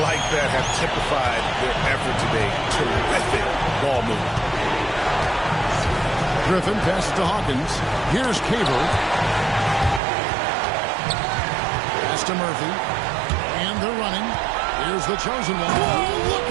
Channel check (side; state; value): left; drops out; at 10.0 s